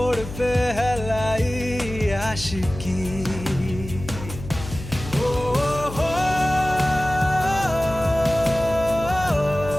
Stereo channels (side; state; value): left; noise; hum, 11 dB below the sound